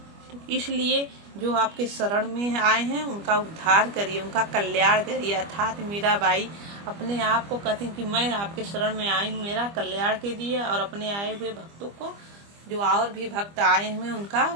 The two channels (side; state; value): left; late; 25 ms